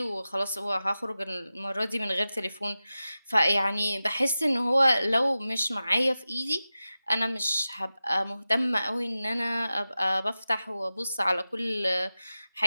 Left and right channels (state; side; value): inverted; both; correlation -0.94